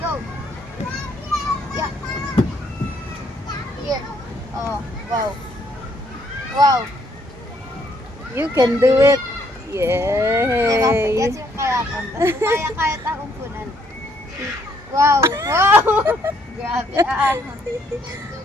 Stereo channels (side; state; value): both; normal; correlation 0.69